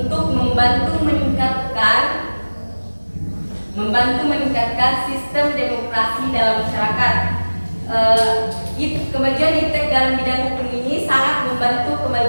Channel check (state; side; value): inverted; both; correlation -1.00